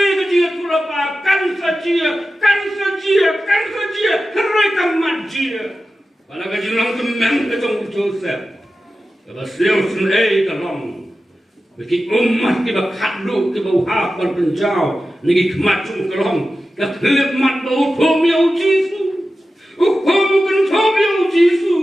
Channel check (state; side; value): normal; both; correlation 0.93